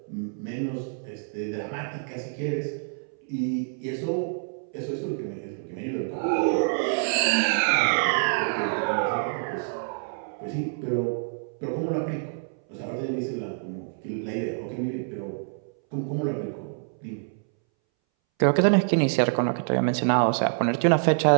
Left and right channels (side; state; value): left; silent; 60 dB below the other